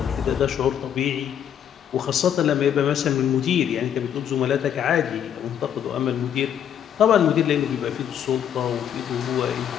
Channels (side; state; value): right; quieter; 9.3 dB